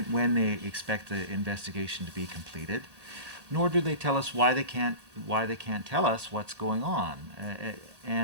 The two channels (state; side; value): late; left; 1.1 ms